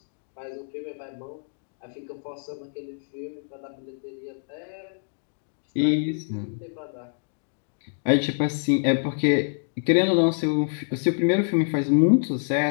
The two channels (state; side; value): silent; right; digital silence